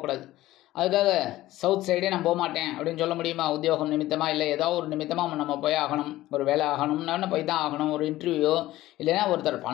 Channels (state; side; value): quieter; right; 15.9 dB